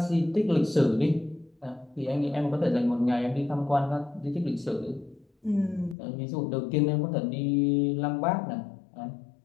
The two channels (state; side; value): drops out; right; at 6.0 s